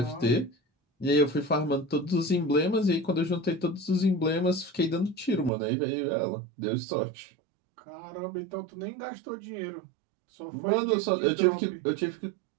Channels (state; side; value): drops out; left; at 5.5 s